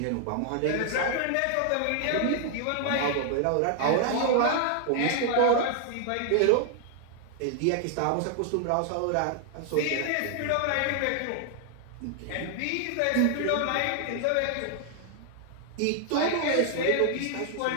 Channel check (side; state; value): both; different; correlation 0.00